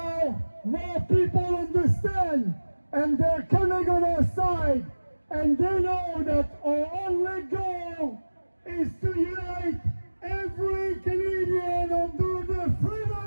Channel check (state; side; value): inverted; both; correlation -1.00